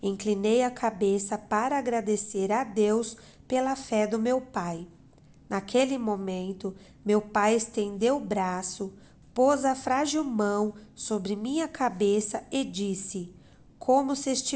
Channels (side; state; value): both; identical; correlation 1.00